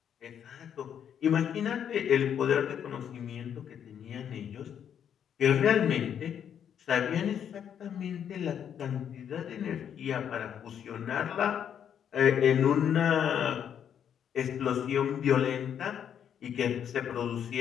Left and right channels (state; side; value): quieter; right; 8.8 dB